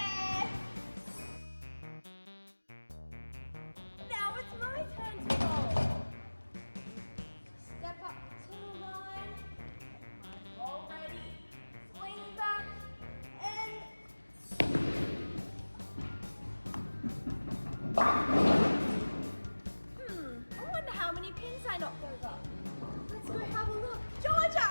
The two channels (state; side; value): inverted; both; correlation -1.00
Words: Now it's my turn to bowl. Step up to the line. My ball ready. Swing back and I wonder how many pins I knocked over. Let's go have a look. Georgia!